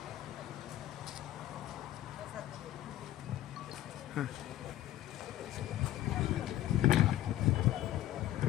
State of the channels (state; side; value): quieter; right; 13.9 dB